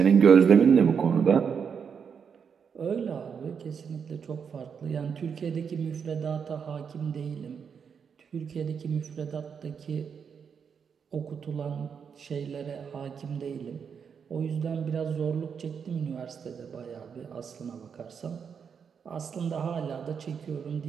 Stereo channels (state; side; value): quieter; left; 6.7 dB